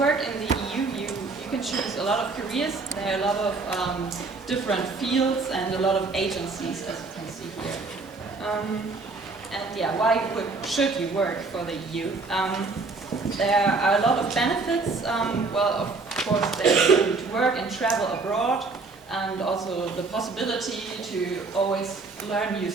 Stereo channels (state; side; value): quieter; left; 3.9 dB